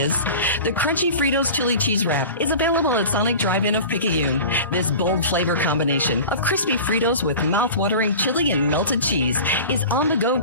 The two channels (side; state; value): both; inverted; correlation -0.36